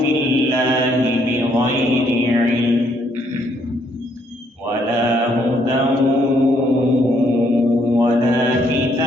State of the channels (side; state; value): both; normal; correlation 0.70